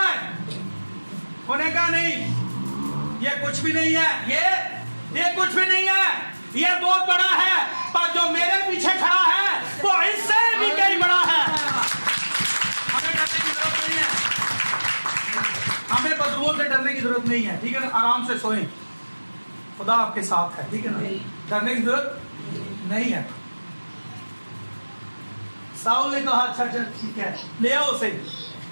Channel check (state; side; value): inverted; both; correlation -1.00